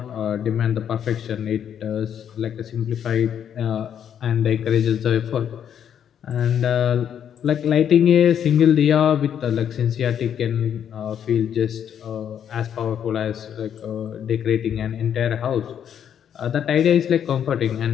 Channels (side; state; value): right; quieter; 9.0 dB